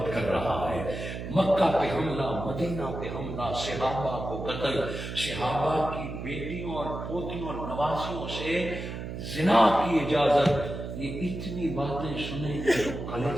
کر رہا ہے۔ مکہ پہ حملہ، مدینہ پہ حملہ، صحابہ کو قتل، صحابہ کی بیٹیوں اور پوتیوں اور نواسیوں سے زنا کی اجازت۔ یہ اتنی باتیں سنیں کہ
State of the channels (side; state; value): right; noise; hum, 7 dB below the sound